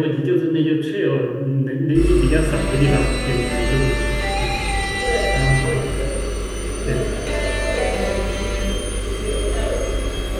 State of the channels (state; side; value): identical; both; correlation 1.00